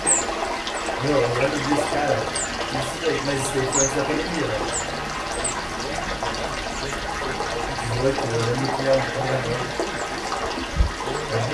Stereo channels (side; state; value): both; identical; correlation 1.00